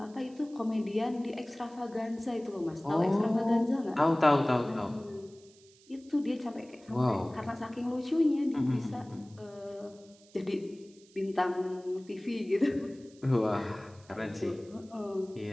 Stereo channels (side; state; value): right; noise; hiss, 27 dB below the sound